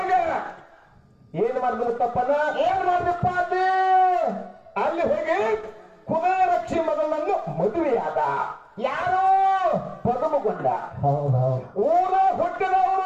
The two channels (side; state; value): both; identical; correlation 1.00